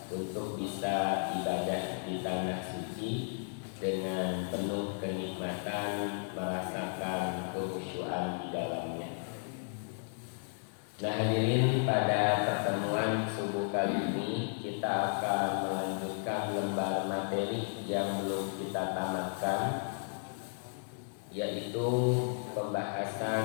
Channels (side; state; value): right; silent; digital silence